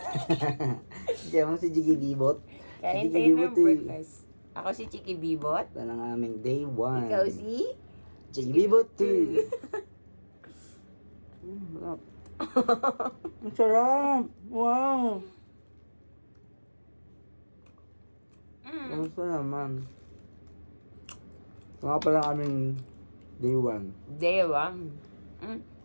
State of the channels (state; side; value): inverted; both; correlation -1.00